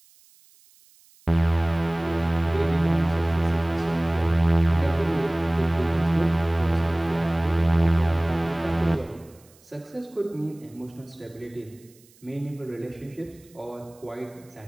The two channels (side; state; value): right; noise; hiss, 29 dB below the sound